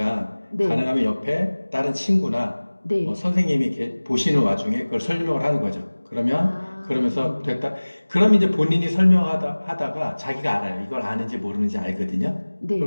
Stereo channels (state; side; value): inverted; both; correlation -1.00